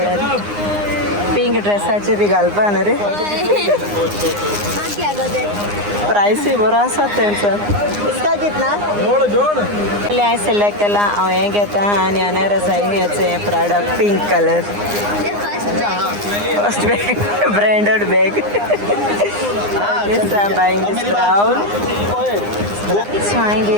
पिंक ड्रेसाचें बी घालपा न्हू रे प्रायसूय बरो आसा तेंचो इसका कितना हांवें सिलेक्ट केला हांव हें घेता आनी अनेर आसा हेचें Prada pink colour first bag branded bag yes I am buying this brown so हांवें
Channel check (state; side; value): late; left; 9.7 ms